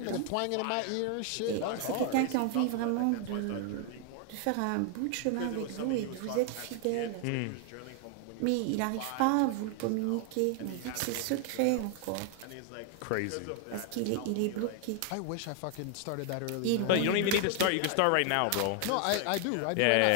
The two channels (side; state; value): both; different; correlation 0.00